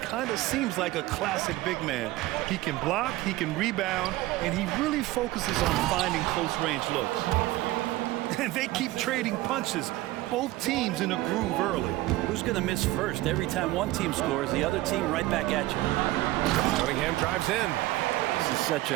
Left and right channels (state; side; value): quieter; left; 17.7 dB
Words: kind of seems like a classic big man. He can block, he can rebound, and he really focuses on finding close-range looks. And they keep trading punches, both teams in a groove early. Who's going to miss first? Every time one team scores, the other team right back at you. Cunningham drives in. This is such